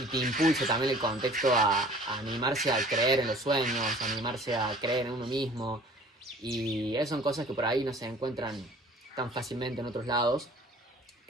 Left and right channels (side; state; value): both; normal; correlation 0.49